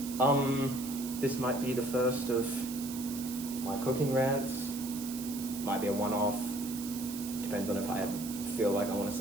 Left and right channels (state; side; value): noise; right; hiss, 10 dB below the sound